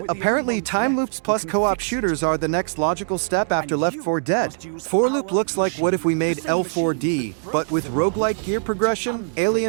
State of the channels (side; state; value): left; silent; digital silence